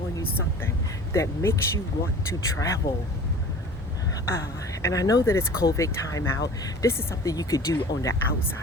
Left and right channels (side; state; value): both; normal; correlation 0.42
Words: you something that makes you want to travel. And I know that it's COVID time out. This is something you could do on the